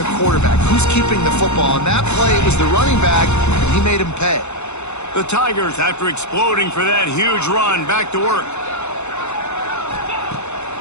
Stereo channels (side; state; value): right; late; 0.82 ms